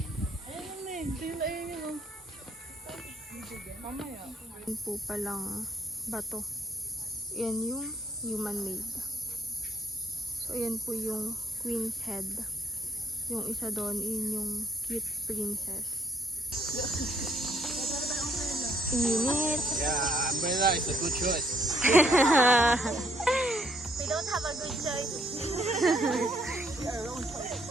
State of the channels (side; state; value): both; normal; correlation 0.66